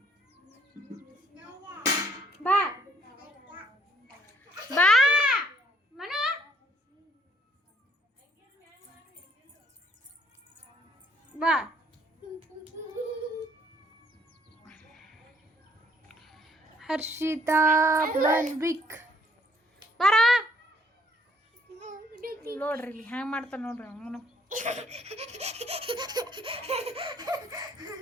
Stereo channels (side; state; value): both; normal; correlation 0.64